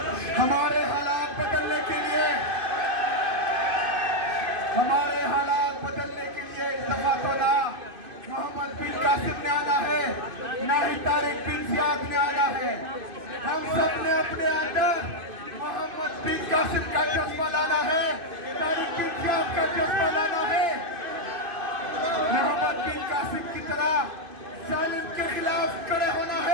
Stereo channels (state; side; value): late; left; 2.5 ms